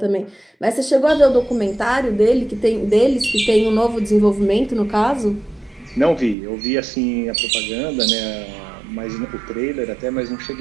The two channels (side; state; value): left; drops out; at 6.4 s